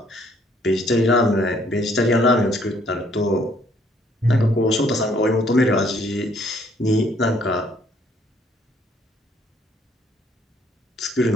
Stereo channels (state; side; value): normal; both; correlation 0.64